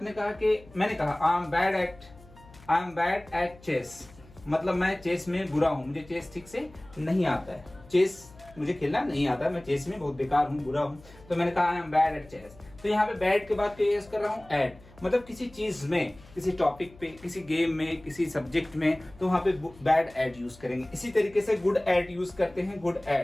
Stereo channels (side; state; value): left; noise; hum, 23 dB below the sound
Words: कहा कि, मैंने कहा I am bad at chess, मतलब मैं चेस में बुरा हूं, मुझे चेस ठीक से नहीं आता है, चेस मुझे खेलना नहीं आता, मैं चेस में बहुत बेकार हूं, बुरा हूं, तो मैंने कहा I am bad at chess. तो यहाँ पे बैड के बाद क्या यूज कर रहा हूँ, एट, मतलब किसी चीज में, किसी टॉपिक पे, किसी गेम में, किसी सब्जेक्ट में, तो वहां पे बैड एट यूज करेंगे। इसी तरीके से गुड एट यूज करते हैं, गुड